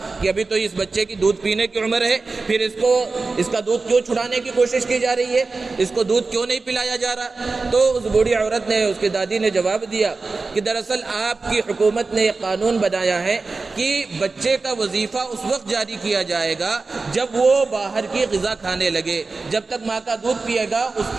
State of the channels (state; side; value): quieter; left; 3.9 dB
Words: کہ ابھی تو اس بچے کی دودھ پینے کی عمر ہے، پھر اس کا دودھ کیوں چھڑانے کی کوشش کی جا رہی ہے؟ اس کو دودھ کیوں نہیں پلایا جا رہا؟ تو اس بوڑھی عورت نے، اس کی دادی نے جواب دیا کہ دراصل آپ کی حکومت نے یہ قانون بنایا ہے کہ بچے کا وظیفہ اس وقت جاری کیا جائے جائے گا جب وہ باہر کی غذا کھانے لگے. جب تک ماں کا دودھ پیے گا